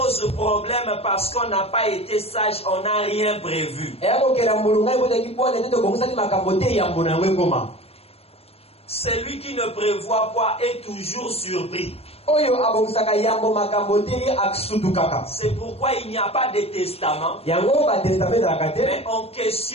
problème parce qu'on n'a pas été sage, on n'a rien prévu. eya kokela mbulu ngai botaki bwana ete tobongisaki makambo te yambo na yango ekoma Celui qui ne prévoit pas est toujours surpris. oyo abongisaka yambo makambo te ye asutukaka C'est pourquoi il n'y a pas de testament, yango batestament ezalaka te mais on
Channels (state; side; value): late; right; 0.29 ms